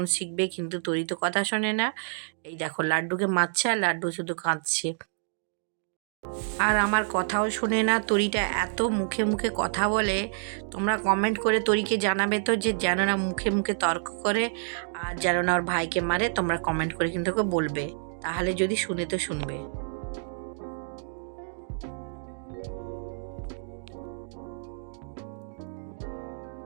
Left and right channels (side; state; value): left; silent; digital silence